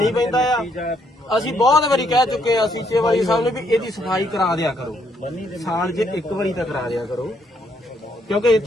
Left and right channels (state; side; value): normal; both; correlation 0.72